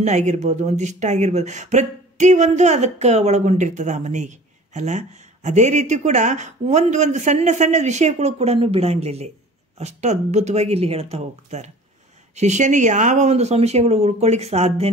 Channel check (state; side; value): normal; both; correlation 0.45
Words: ಆಗಿರ್ಬೋದು, ಒಂದಿಷ್ಟು ಆಗಿರ್ಬೋದು, ಪ್ರತಿಯೊಂದು ಅದಕ್ಕೆ ಒಳಗೊಂಡಿರ್ತದೆ ಆ ಮನೆಗೆ ಅಲ್ಲ. ಅದೇ ರೀತಿ ಕೂಡ ಒಂದು ಸಣ್ಣ ವಿಷಯಗಳು ಕೂಡ ಬಿಡಂಗಿಲ್ಲ. ಅಷ್ಟು ಅದ್ಭುತವಾಗಿ ಇಲ್ಲಿ ಹೇಳ್ತಾ ಹೋಗ್ತಾರೆ. ಶಿಷ್ಯನಿಗೆ ಯಾವ ಒಂದು ಸಂಶಯಗಳು ಉಳ್ಕೊಳ್ಳಿಕ್ಕೆ